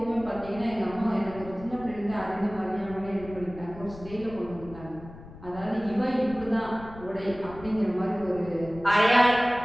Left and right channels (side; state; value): left; noise; rumble, 16 dB below the sound